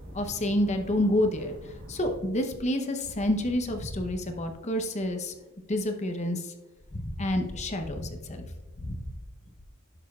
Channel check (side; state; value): both; normal; correlation 0.64